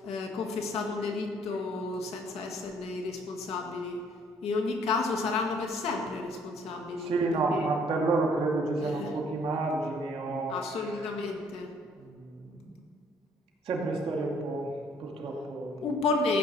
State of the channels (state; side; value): normal; both; correlation 0.61